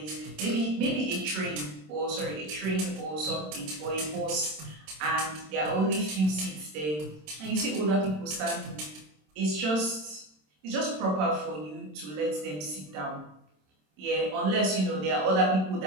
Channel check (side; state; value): left; late; 27 ms